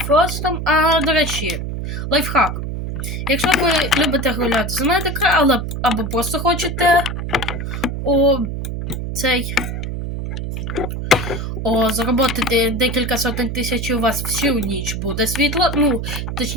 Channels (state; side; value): noise; right; hum, 4 dB below the sound